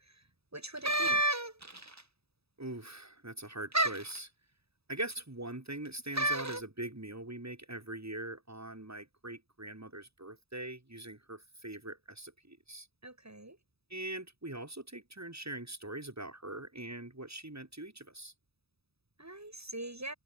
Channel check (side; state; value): left; late; 0.78 ms